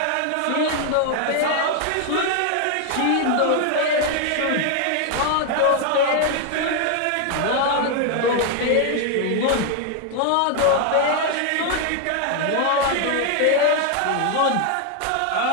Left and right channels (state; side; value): different; both; correlation 0.01